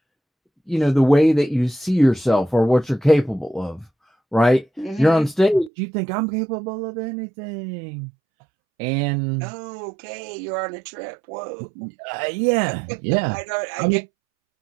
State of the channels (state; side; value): drops out; left; at 5.7 s